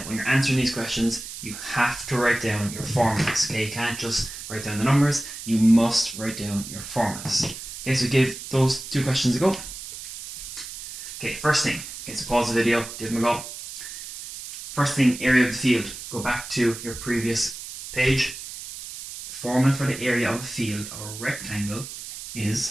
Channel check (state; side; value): noise; right; hiss, 11 dB below the sound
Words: when you're answering these questions, you have to write down your formulas. Okay, you can't just write down the numbers. You must write down your formulas. Okay, so give those 2 questions a go. Okay, first thing. Okay, so pause the video, give them a go. First thing, area of the field. Go back to your previous page. Formula for the area of a field or a rectangle